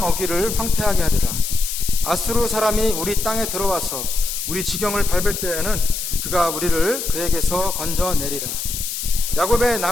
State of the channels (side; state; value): left; noise; hiss, 5 dB below the sound